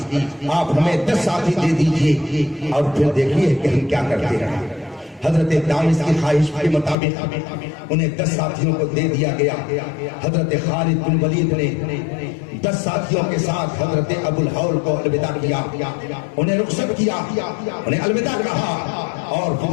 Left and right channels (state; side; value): drops out; right; at 7.0 s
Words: آپ ہمیں 10 ساتھی دے دیجئے اور پھر دیکھیے کہ ہم کیا کرتے ہیں. حضرت دامس کی خواہش کے مطابق انہیں 10 ساتھیوں کو دے دیا گیا. حضرت خالد بن ولید نے 10 ساتھیوں کے ساتھ حضرت ابو الہول کو الوداع کیا, انہیں رخصت کیا, انہیں الوداع کہا اور پھر